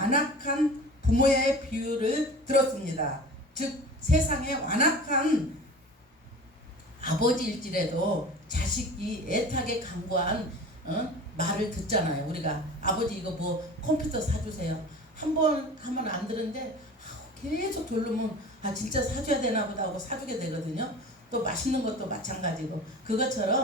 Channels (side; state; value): both; normal; correlation 0.38